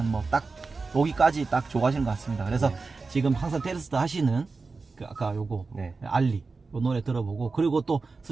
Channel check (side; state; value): left; quieter; 4.1 dB